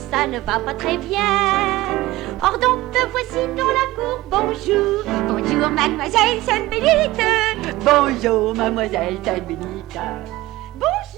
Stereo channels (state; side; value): quieter; left; 17.9 dB